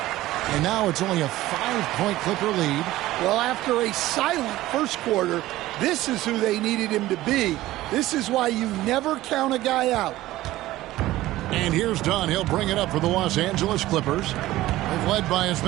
And now it's only a 5-point Clipper lead. Well, after a silent first quarter, this is who they needed him to be. This is why you never count a guy out. And here's Dunn. He'll bring it up for the Los Angeles Clippers. They've led by as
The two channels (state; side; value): quieter; left; 16.3 dB